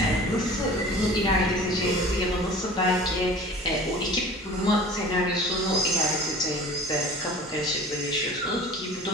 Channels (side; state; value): both; normal; correlation 0.42